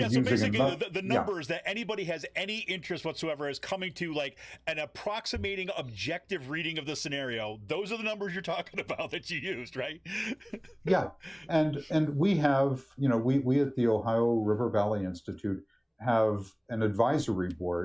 so using basically the numbers that anybody has any interest whatsoever is coming to like an approximating objective reading of the scenario. Those are the numbers you're talking about that you used, right? Yeah. And we have, we at the Ohio River Valley Institute have an advisory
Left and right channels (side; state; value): both; identical; correlation 1.00